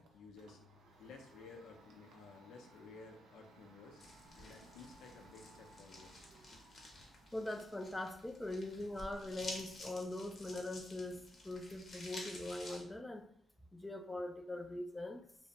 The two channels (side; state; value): both; normal; correlation 0.88